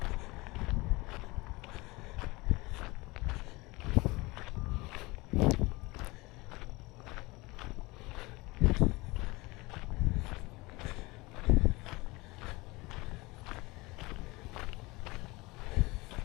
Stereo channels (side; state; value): right; quieter; 23.1 dB